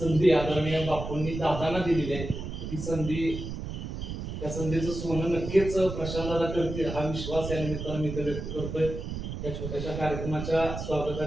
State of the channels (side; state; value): right; noise; rumble, 6 dB below the sound